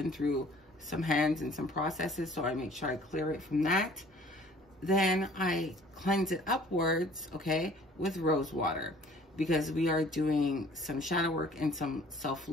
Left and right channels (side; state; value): both; normal; correlation 0.53